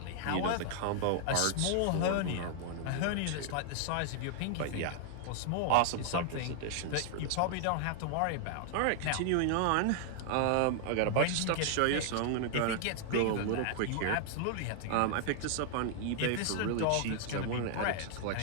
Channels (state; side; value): different; both; correlation 0.00